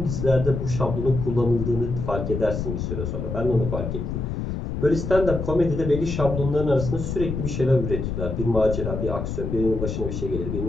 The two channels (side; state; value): left; noise; rumble, 4 dB below the sound